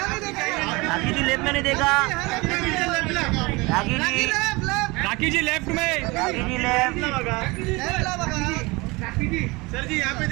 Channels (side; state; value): left; quieter; 24.4 dB